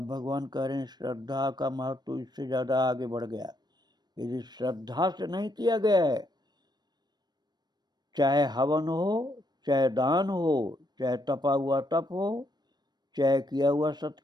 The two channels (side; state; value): left; late; 0.20 ms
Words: भगवान कह रहे हैं श्रद्धा का महत्व तो इससे ज्यादा आगे बढ़ गया। यदि श्रद्धा से नहीं किया गया है, चाहे हवन हो, चाहे दान हो, चाहे तपा हुआ तप हो, चाहे किया हुआ